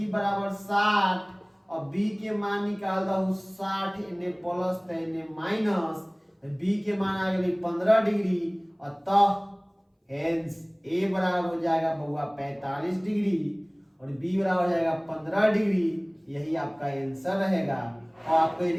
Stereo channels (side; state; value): both; identical; correlation 1.00